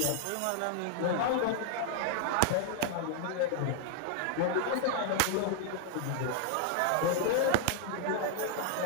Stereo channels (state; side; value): different; both; correlation 0.00